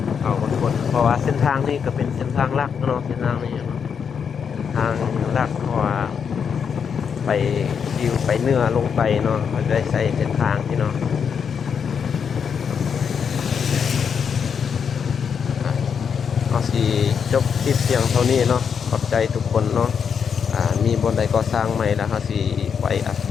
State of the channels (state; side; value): quieter; right; 6.9 dB